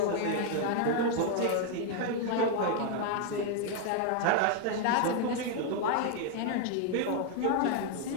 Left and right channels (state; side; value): different; both; correlation 0.00